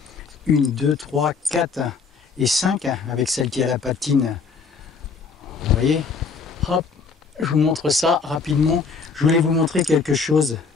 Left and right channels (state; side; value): quieter; right; 5.1 dB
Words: 1, 2, 3, 4 et 5, hein, avec celle qui a la patine. Vous voyez? Hop, je vous montre ça rapidement. Je voulais vous montrer quelque chose.